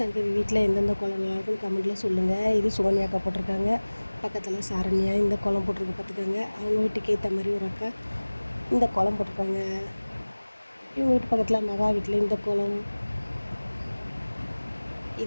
வீட்டில் எந்தெந்த கோலம் நல்லாயிருக்குன்னு கமெண்ட்டில் சொல்லுங்கள். இது சோனியாக்கா போட்டிருக்காங்க. பக்கத்தில் சாரண்யா இந்த கோலம் போட்டிருக்கு பார்த்துக்கோங்க. அவங்க வீட்டுக்கு ஏற்ற மாதிரி ஒரு அக்கா இந்த கோலம் போட்டிருக்காங்க. இவங்க வீட்டு பக்கத்தில் மகா வீட்டில் இந்த கோலம்,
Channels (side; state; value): both; inverted; correlation -1.00